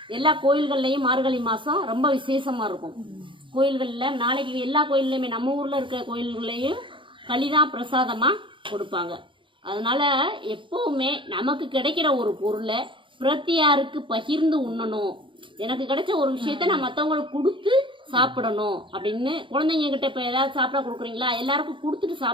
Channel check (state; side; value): late; left; 0.24 ms